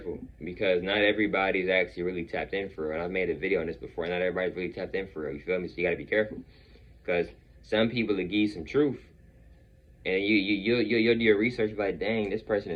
because not everybody's actually really tapped in for real. And I've made a video on this before. Not everybody's really tapped in for real. You feel me? So you got to be careful, because some people will give you some truth, and you'll do your research like, dang, this person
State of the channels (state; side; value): identical; both; correlation 1.00